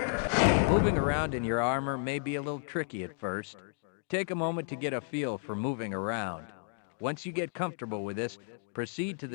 Moving around in your armor may be a little tricky at first. Take a moment to get a feel for moving around. Once you get comfortable with this, proceed to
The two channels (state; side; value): silent; right; 56 dB below the other